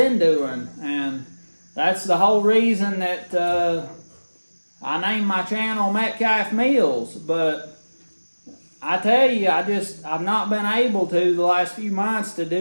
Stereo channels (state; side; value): inverted; both; correlation -1.00